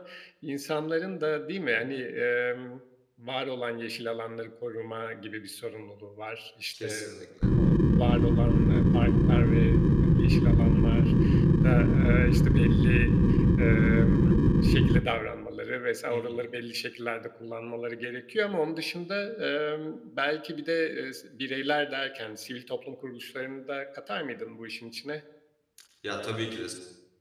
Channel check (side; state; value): both; identical; correlation 1.00